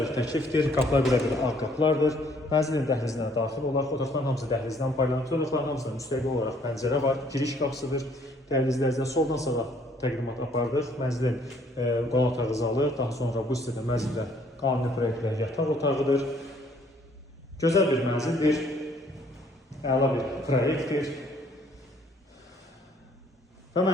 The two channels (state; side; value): normal; both; correlation 0.62